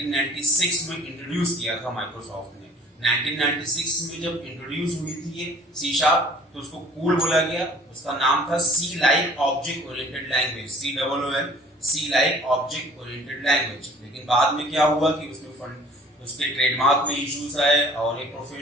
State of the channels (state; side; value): normal; both; correlation 0.51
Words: में इंट्रोड्यूस किया था माइक्रोसॉफ्ट ने। 1996 में जब इंट्रोड्यूस हुई थी ये सी शार्प, तो उसको कूल बोला गया। उसका नाम था C like object oriented language, COOL, C like object oriented language. लेकिन बाद में क्या हुआ कि उसके ट्रेडमार्क में इश्यूज आए और एक